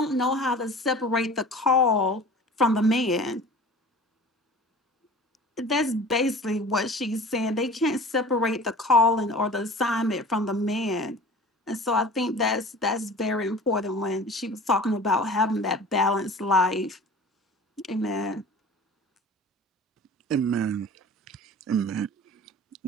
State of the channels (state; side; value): normal; both; correlation 0.41